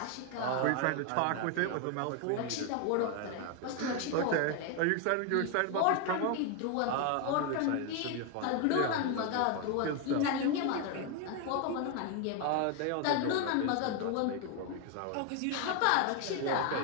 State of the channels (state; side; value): different; both; correlation 0.01